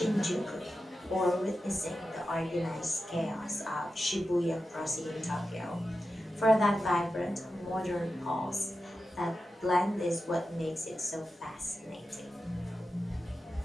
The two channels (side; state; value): both; normal; correlation 0.91